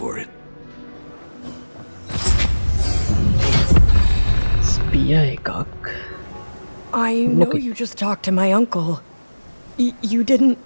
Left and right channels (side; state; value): both; inverted; correlation -1.00